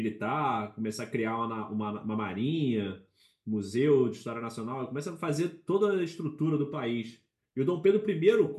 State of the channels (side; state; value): both; identical; correlation 1.00